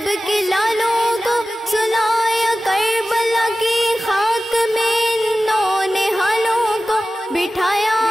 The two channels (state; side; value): normal; both; correlation 0.95